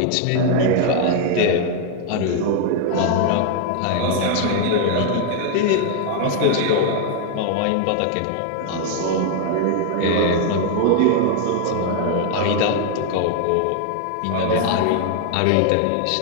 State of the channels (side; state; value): both; different; correlation 0.00